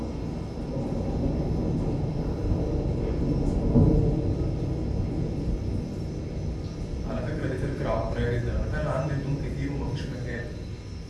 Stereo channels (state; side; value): identical; both; correlation 1.00